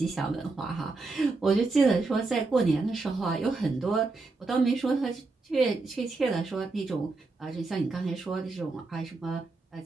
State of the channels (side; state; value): left; quieter; 3.6 dB